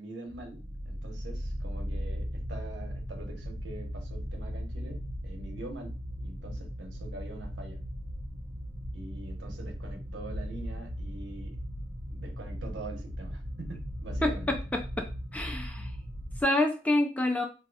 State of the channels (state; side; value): normal; both; correlation 0.82